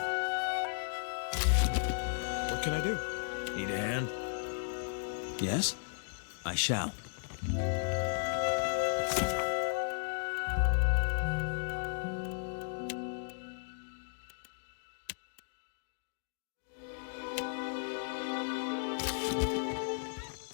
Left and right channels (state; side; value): silent; right; digital silence